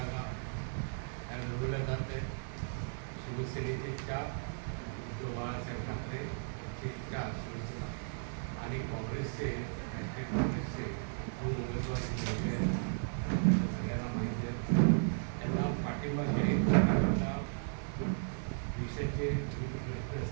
लढवल्या जात आहेत. शिवसेनेचे 4, उद्धव बाळासाहेब ठाकरेचे 4 शिवसेना आणि काँग्रेसचे राष्ट्रीय काँग्रेसचे 2 उमेदवार निवडले आहेत. सगळ्यांना माहिती आहे. त्यांना पाठिंबा जाहीर करण्याचा देशाचे विविध प्रश्न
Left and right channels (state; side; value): silent; left; 54 dB below the other